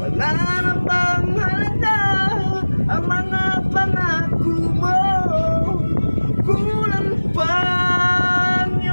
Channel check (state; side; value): inverted; both; correlation -1.00